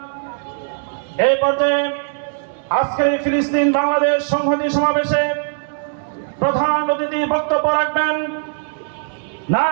এই পর্যায়ে আজকের এই ফিলিস্তিন বাংলাদেশ সংহতি সমাবেশে প্রধান অতিথি বক্তব্য রাখবেন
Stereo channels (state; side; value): silent; left; digital silence